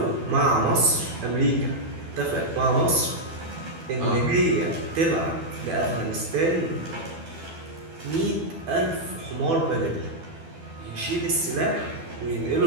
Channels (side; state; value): left; late; 12 ms